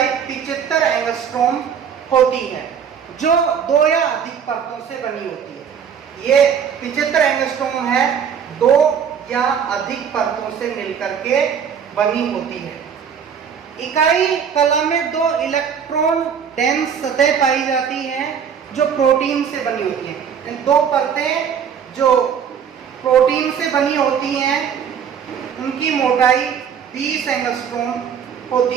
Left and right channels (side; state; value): left; quieter; 7.6 dB